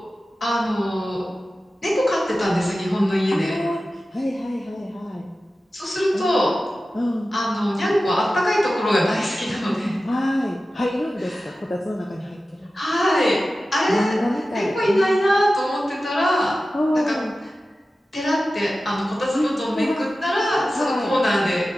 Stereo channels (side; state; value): both; normal; correlation 0.94